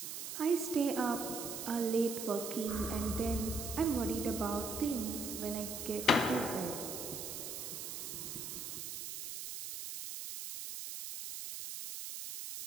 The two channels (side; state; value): right; noise; hiss, 6 dB below the sound